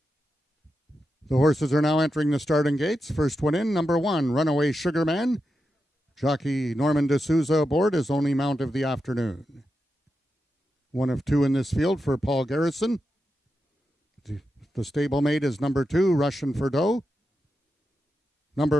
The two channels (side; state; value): both; normal; correlation 0.88